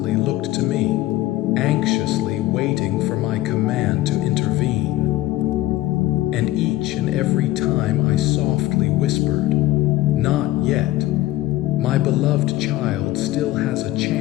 looked to me, anxiously waiting for my command to intervene. And each and every time I softly whispered, "Not yet," my beloved child still has a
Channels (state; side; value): quieter; right; 16.1 dB